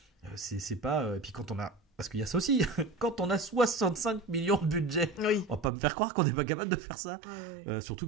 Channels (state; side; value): drops out; left; at 5.7 s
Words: C'est pas, et puis quand on a, parce qu'il y a ça aussi, quand on a 65 millions de budget, on va pas me faire croire qu'on n'est pas capable de faire ça.